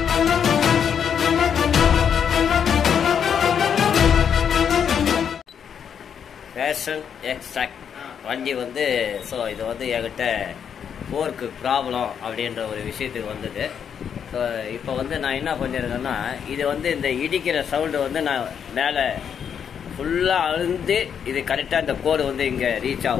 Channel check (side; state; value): right; quieter; 7.8 dB